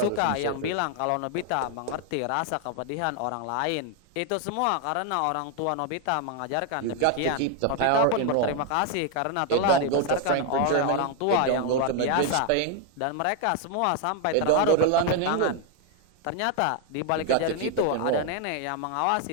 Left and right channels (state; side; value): different; both; correlation 0.01